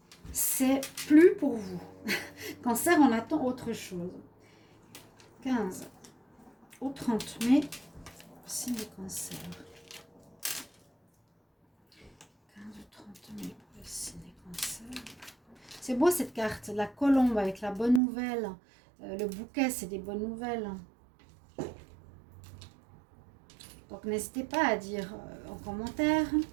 C'est plus pour vous. Cancer, on attend autre chose. 15 au 30 mai, signe du cancer. 15 au 30 mai pour le signe des cancers. C'est beau cette carte, la colombe avec la bonne nouvelle. Le bouquet, c'est des bonnes nouvelles. Donc n'hésitez pas à dire en commentaire,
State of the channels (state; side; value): drops out; left; at 18.0 s